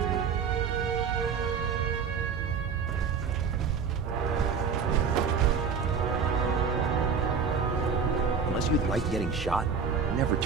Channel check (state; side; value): quieter; left; 5.9 dB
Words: Unless you'd like getting shot, never